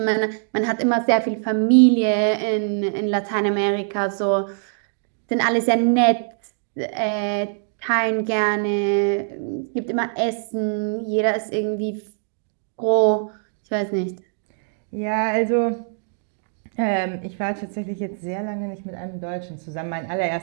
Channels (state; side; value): silent; left; digital silence